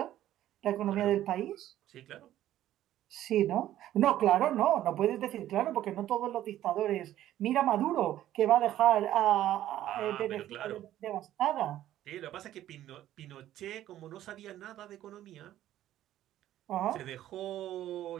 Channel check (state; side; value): quieter; left; 12.9 dB